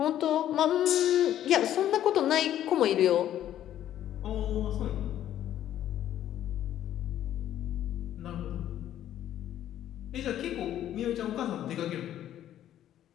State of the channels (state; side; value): quieter; right; 11.6 dB